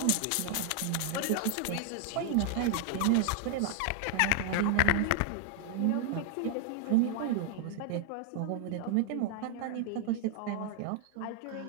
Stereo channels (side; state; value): both; different; correlation 0.00